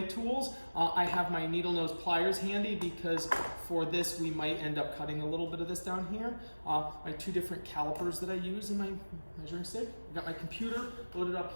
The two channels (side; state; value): both; inverted; correlation -1.00